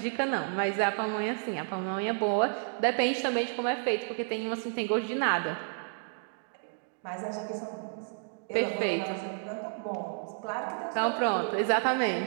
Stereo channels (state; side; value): silent; left; digital silence